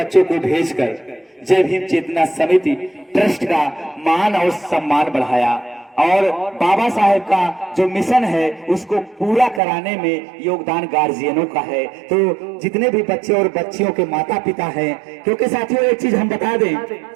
को भेजकर जय भीम चेतना समिति ट्रस्ट का मान और सम्मान बढ़ाया और बाबा साहेब का जो मिशन है उसको पूरा कराने में योगदान गार्जियनों का है। तो जितने भी बच्चे और बच्चियों के माता पिता हैं, क्योंकि साथियों एक चीज हम बता दें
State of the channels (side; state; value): left; drops out; at 9.6 s